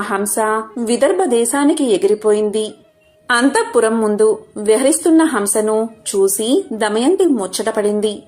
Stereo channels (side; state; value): both; identical; correlation 1.00